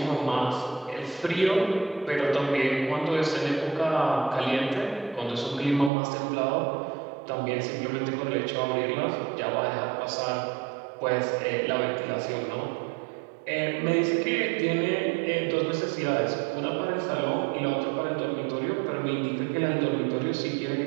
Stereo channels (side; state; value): left; drops out; at 5.9 s